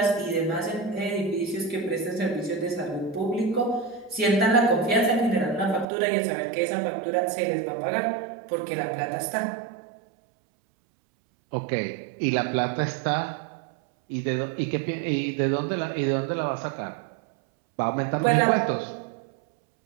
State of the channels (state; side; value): drops out; left; at 5.9 s